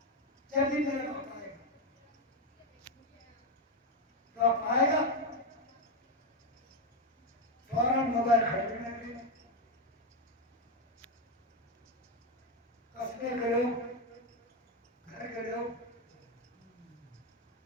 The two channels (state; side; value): normal; both; correlation 0.07